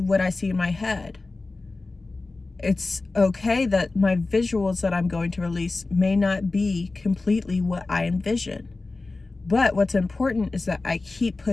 what I see in my head. It's okay that my visuals that I'm going to release may not be completely what I envision. But what's important is that I keep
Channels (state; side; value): quieter; right; 3.4 dB